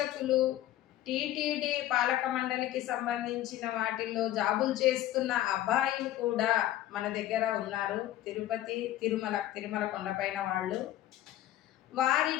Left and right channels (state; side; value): quieter; right; 13.7 dB